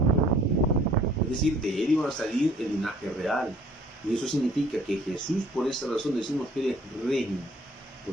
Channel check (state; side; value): normal; both; correlation 0.56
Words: Es decir, de él iba a salir el linaje real. Y eso significa que Jesús, por esa razón decimos que él es rey,